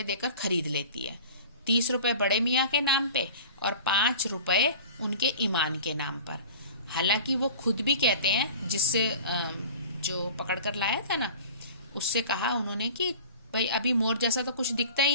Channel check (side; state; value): both; inverted; correlation -0.41